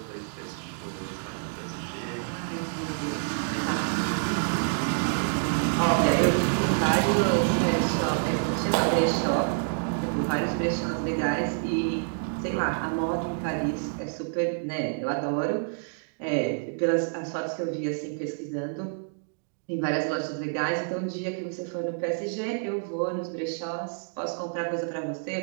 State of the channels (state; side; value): silent; left; digital silence